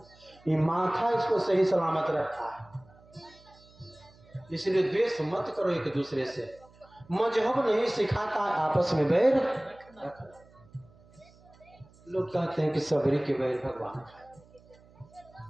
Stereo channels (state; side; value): noise; right; hum, 27 dB below the sound